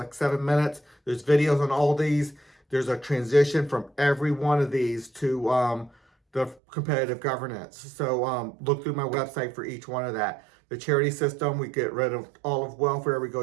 7 minutes. There's videos on all these. There's a transition from every one of these to the competitive governance. So look through my website for each one of that. The charity system, we get rid of all of welfare, we go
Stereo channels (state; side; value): drops out; left; at 6.6 s